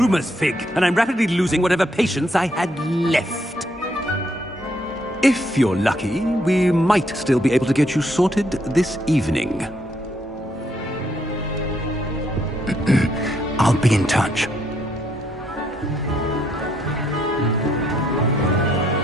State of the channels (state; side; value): normal; both; correlation 0.73